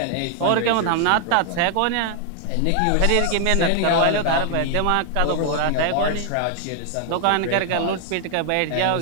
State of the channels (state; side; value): different; both; correlation 0.00